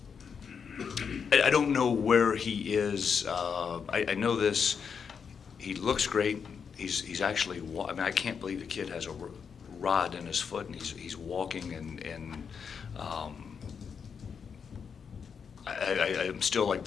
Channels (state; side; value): quieter; right; 6.5 dB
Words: I don't know where he is. I know this. He looks great. He's actually. I mean, I can't believe the kid has a rod in his foot and he's walking and. I'm still like